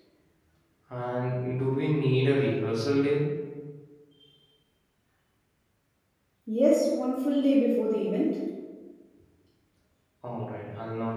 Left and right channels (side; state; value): both; identical; correlation 1.00